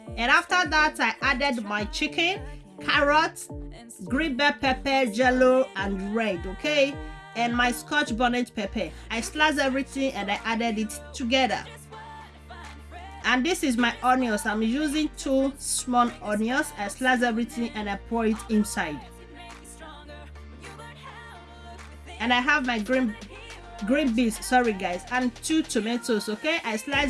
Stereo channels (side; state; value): both; identical; correlation 1.00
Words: and after that I added my chicken, carrots, green bell pepper, yellow and red, okay, and my scotch bonnet pepper. I sliced everything and I added it together. And this is my onions. I'm using 2 small onions. I slice everything and I pour it inside. And I have my green beans, sorry guys, and 2 tomatoes, okay. I